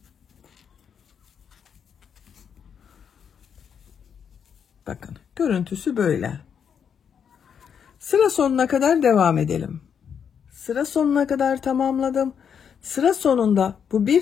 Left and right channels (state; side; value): quieter; right; 7.5 dB